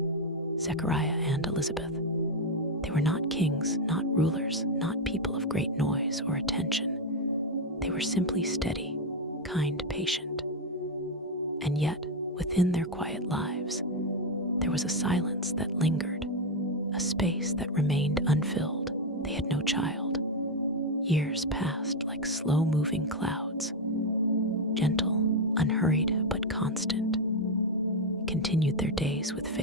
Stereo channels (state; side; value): normal; both; correlation 0.05